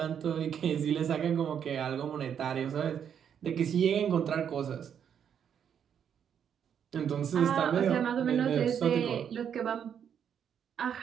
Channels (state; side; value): quieter; left; 8.3 dB